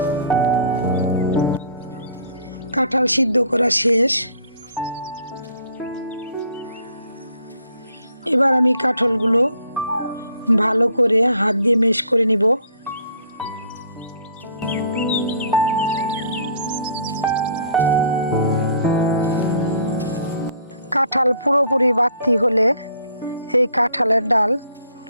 কাঁঠাল সিদ্ধ করা শেষ। এবার আমি কাঁঠালগুলো ভালো করে হাত দিয়ে মেশ করে নিব। কাঁঠাল পুরোপুরি বাতি হলে এই কাঁঠালের ডাল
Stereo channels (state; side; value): inverted; both; correlation -0.58